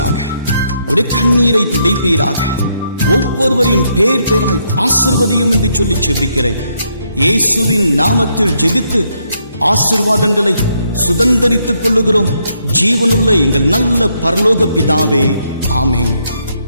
அவருடைய கண்ணீரை துடைப்பீராக. ஒவ்வொருவரையும் பேர் பேராய் ஆசீர்வதியும் என்று சொல்லி ஜெபிக்கிறேன். இயேசுவின் நாமத்தில் ஜெபித்து ஆசீர்வாதங்களை சுதந்தரித்துக் கொள்ளுகிறோம். ஜீவனுள்ள எங்கள் நல்ல பரலோக பிதாவே, ஆமென்,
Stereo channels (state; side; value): inverted; both; correlation -0.75